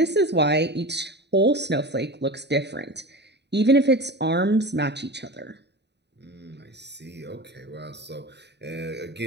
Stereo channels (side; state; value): left; late; 0.50 ms